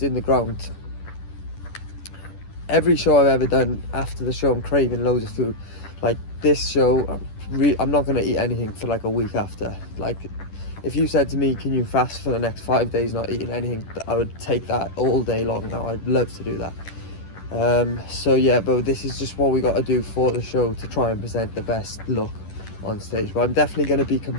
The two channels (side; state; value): right; late; 10 ms